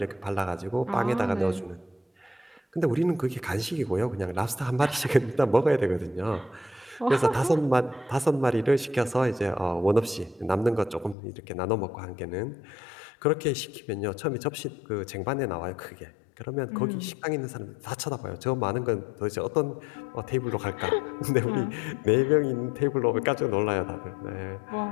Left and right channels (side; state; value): right; drops out; at 11.2 s